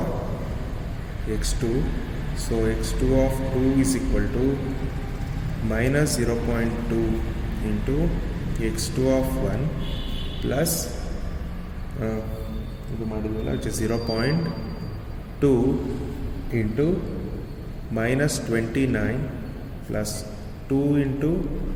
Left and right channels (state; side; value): identical; both; correlation 1.00